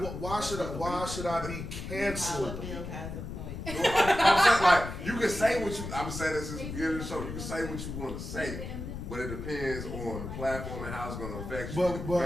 though. why should I be Dollar canceled? Bill has a point. I'm saying, like, you can say what you, I'm saying this since the beginning of the show, you can say what you want to say, but it depends on the platform and how it's going to affect you,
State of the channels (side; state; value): left; noise; rumble, 7 dB below the sound